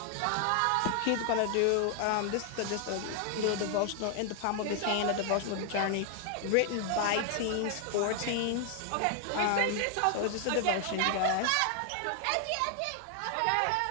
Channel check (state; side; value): different; both; correlation 0.00